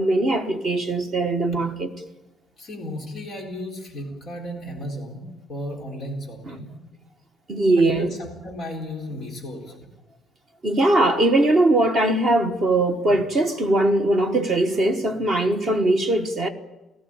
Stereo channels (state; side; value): normal; both; correlation 0.71